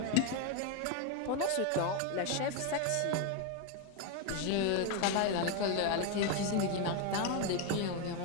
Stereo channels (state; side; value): different; both; correlation 0.02